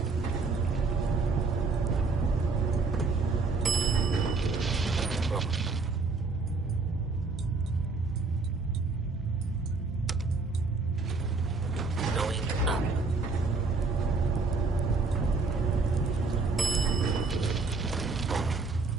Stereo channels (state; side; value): quieter; left; 3.9 dB